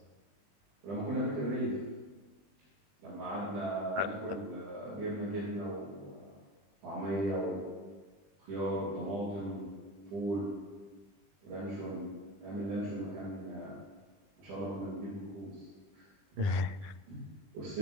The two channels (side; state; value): left; late; 20 ms